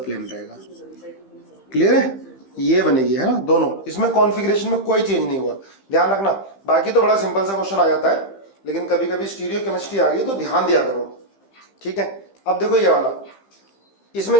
प्लेन रहेगा। क्लियर है, ये बनेगी, है ना दोनों। इसमें कॉन्फ़िगरेशन में कोई चेंज नहीं हुआ, ध्यान रखना। बाकी तो बड़ा सिंपल सा क्वेश्चन आ जाता है, लेकिन कभी कभी स्टीरियो केमिस्ट्री आ गई तो ध्यान दिया करो। ठीक है, अब देखो ये वाला, इसमें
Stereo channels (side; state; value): right; late; 15 ms